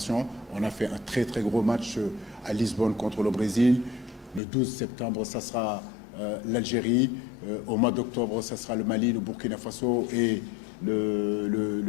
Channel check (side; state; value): right; drops out; at 4.4 s